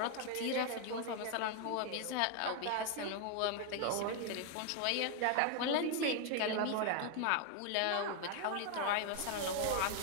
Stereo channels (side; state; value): both; different; correlation 0.00